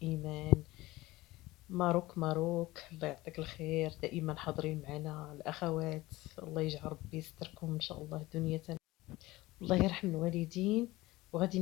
إيمان، ماروك، الله يعطيك الخير، دائما حاضرين معنا الأخوات. الله يجعل ربي يستركم إن شاء الله دنيا. الله يرحم الوالدين. وغادي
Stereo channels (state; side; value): quieter; right; 19.1 dB